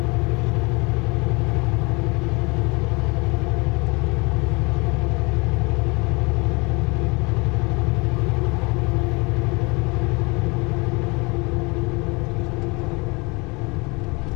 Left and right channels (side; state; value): right; quieter; 27.5 dB